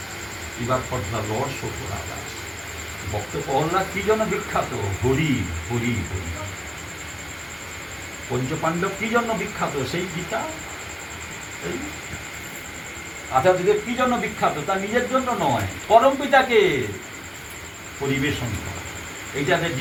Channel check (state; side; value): identical; both; correlation 1.00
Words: এবার for the lord, show for others. ভক্ত প্রহ্লাদ কি জন্য বিখ্যাত? হরি হরি হরি। পঞ্চপাণ্ডব কি জন্য বিখ্যাত? সেই গীতা। আচার্যদেব কি জন্য বিখ্যাত? তার নিজের জন্য নয়, পরম পিতাকে পরিবেশন করা। এইটাদের